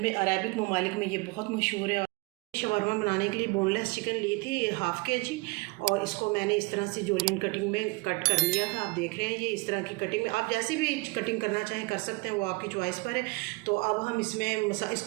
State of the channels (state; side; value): quieter; left; 25.9 dB